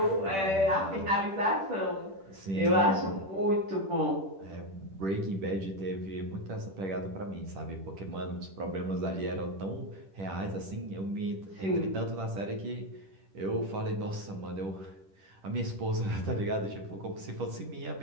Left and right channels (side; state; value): left; late; 10 ms